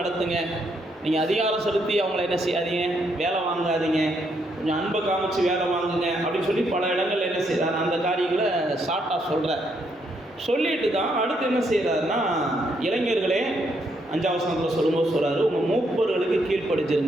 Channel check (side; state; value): both; normal; correlation 0.75